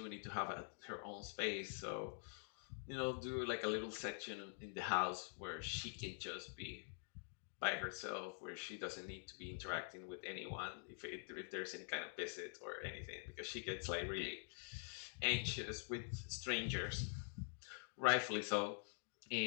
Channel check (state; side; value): silent; right; digital silence